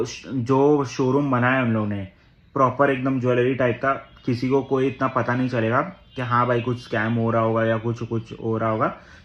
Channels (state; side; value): identical; both; correlation 1.00